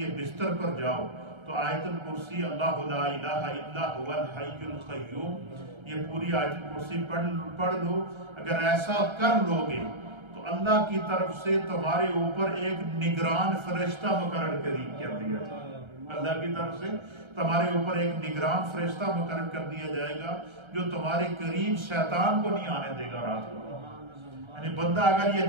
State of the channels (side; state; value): left; late; 1.3 ms